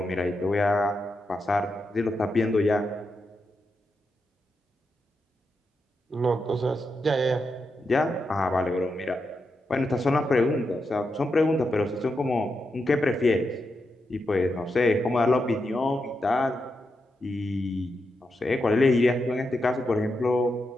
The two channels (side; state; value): both; normal; correlation 0.85